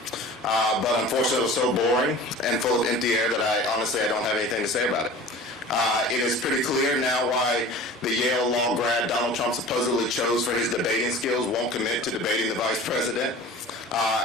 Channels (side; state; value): both; normal; correlation 0.40